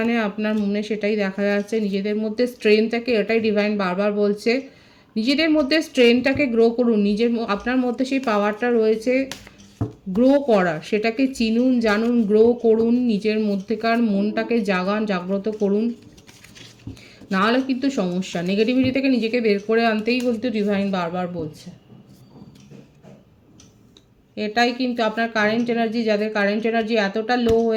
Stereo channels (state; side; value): identical; both; correlation 1.00